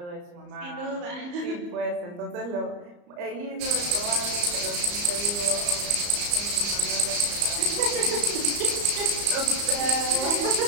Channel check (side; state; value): left; late; 34 ms